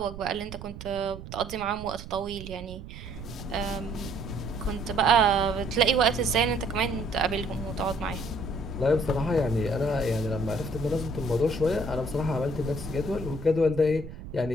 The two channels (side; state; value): right; noise; rumble, 12 dB below the sound